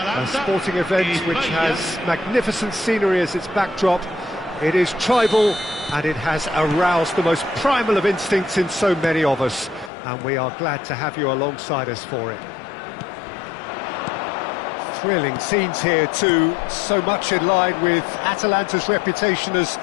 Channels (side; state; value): right; drops out; at 9.9 s